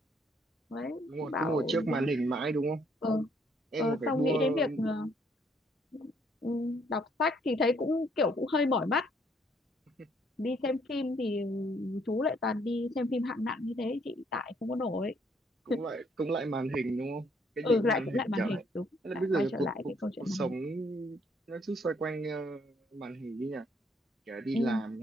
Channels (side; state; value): both; normal; correlation 0.67